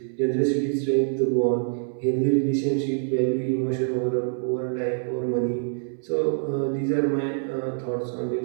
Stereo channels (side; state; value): left; silent; digital silence